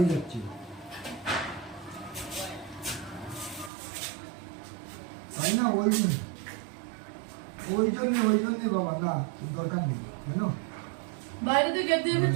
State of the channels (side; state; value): left; drops out; at 3.7 s